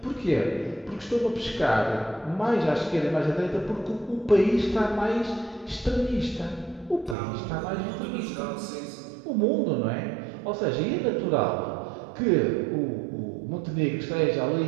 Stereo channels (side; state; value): left; drops out; at 7.2 s